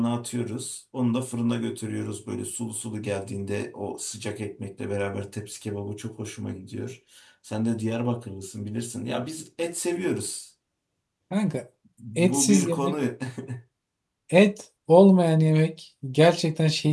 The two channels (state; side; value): identical; both; correlation 1.00